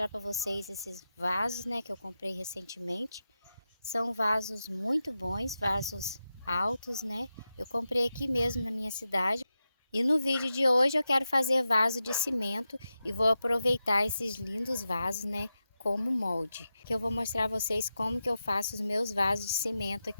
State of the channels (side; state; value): both; inverted; correlation -0.90